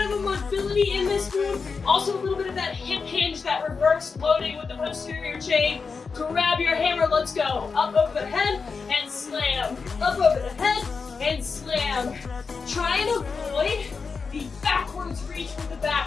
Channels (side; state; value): right; quieter; 5.0 dB